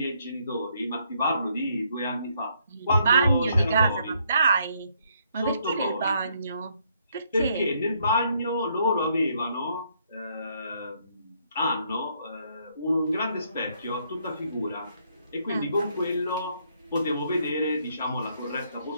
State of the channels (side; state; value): both; inverted; correlation -0.71